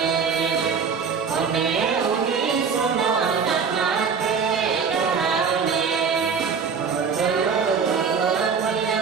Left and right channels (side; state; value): left; quieter; 5.9 dB